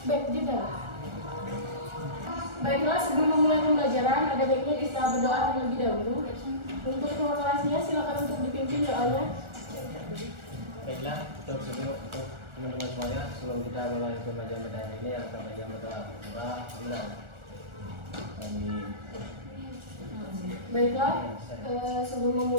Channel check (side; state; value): left; late; 1.4 ms